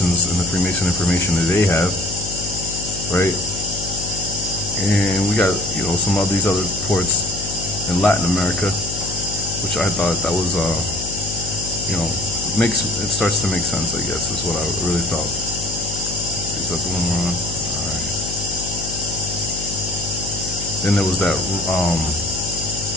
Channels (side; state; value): left; noise; hum, 9 dB below the sound